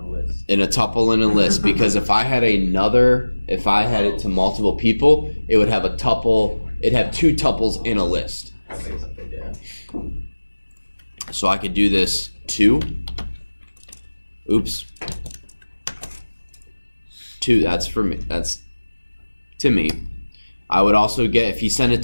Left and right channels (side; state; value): both; inverted; correlation -1.00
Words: In a tuple in a list, because if I had it to multiple people, it would have a tuple. It'd have two tuples in a list. So I could do this two. Oops. Two. That's for me. That's to me. I would also get, if you send it